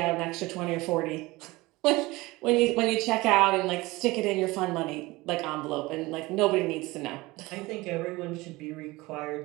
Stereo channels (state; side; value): quieter; left; 21.0 dB